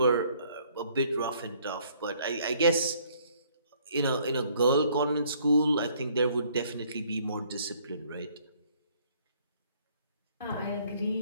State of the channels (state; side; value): inverted; both; correlation -0.63